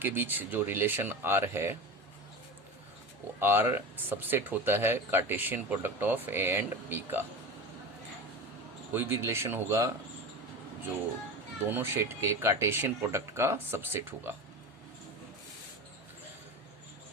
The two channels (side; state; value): both; normal; correlation 0.27